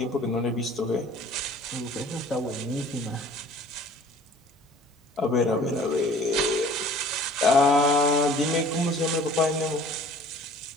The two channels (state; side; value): normal; both; correlation 0.50